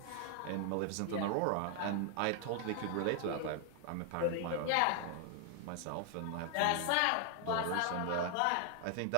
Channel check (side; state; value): both; different; correlation 0.00